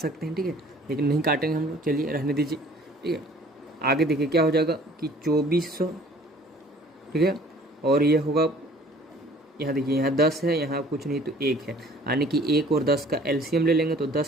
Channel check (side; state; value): both; normal; correlation 0.53